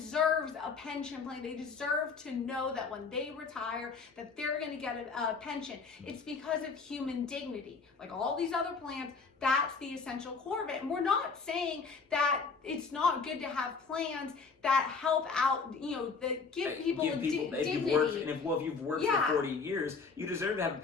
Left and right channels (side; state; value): right; quieter; 4.9 dB